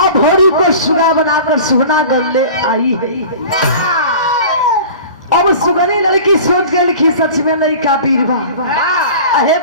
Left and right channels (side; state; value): both; inverted; correlation -0.40